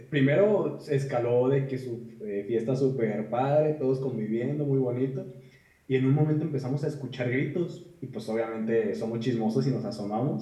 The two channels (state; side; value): identical; both; correlation 1.00